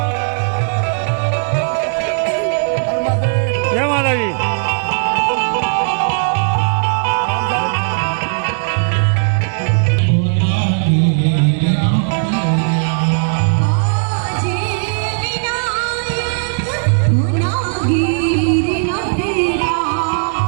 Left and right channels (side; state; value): left; silent; digital silence